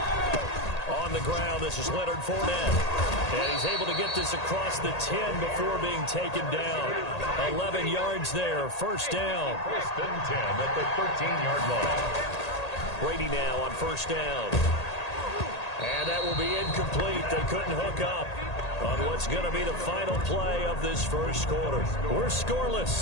On the ground, this is Leonard Fournette. And he's able to get this across the 10 before being taken down. 11 yards there, 1st down. 1st and 10 at the 13-yard line. Brady now on first down. And that will be incomplete. They couldn't hook up on what's going to be the final play of this first quarter. We're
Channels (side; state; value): right; late; 1.8 ms